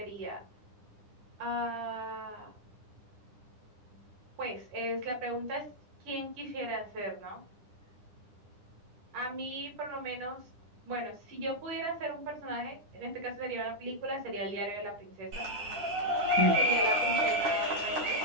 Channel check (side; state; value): left; late; 9.9 ms